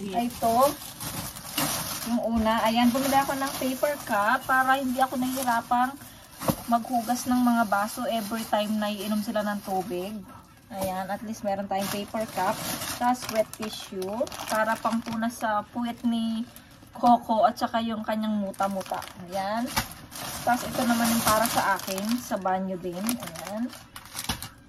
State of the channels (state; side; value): identical; both; correlation 1.00